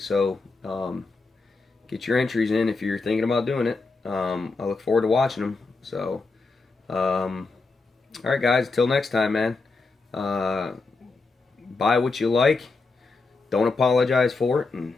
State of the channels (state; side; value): quieter; right; 3.9 dB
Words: so get your entries in if you're thinking about doing it. I look forward to watching them. So alright guys, until next time, man. Buy what you like, don't apologize for it, and